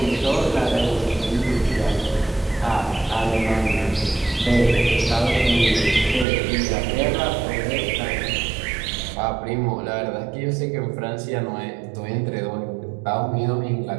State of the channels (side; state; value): left; drops out; at 6.2 s